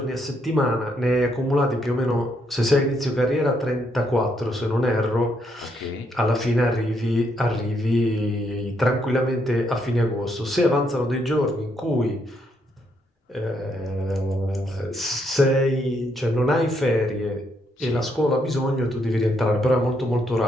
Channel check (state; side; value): normal; both; correlation 0.75